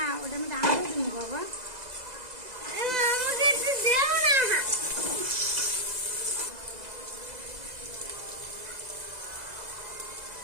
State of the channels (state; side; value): late; left; 2.0 ms